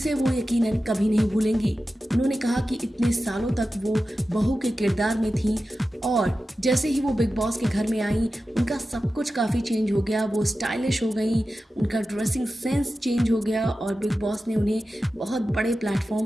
वो यकीनन कभी नहीं भूलेंगी। उन्होंने कहा कि इतने सालों तक वो बहू के किरदार में थी और जैसे ही वो बिग बॉस के घर में आई उनका सब कुछ काफ़ी चेंज हो गया। वो स्टाइलिश हो गई, उनका ड्रेसिंग सेंस चेंज हो गया और बिग बॉस ने उन्हें बहुत बड़े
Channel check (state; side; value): normal; both; correlation 0.93